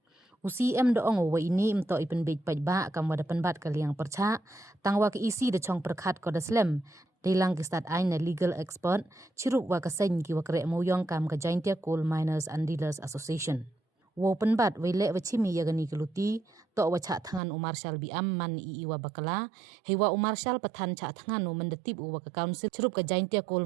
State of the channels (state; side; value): drops out; left; at 17.4 s